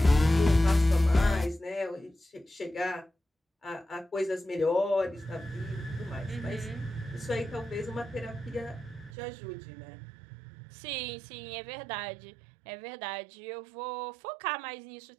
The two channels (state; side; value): drops out; left; at 9.1 s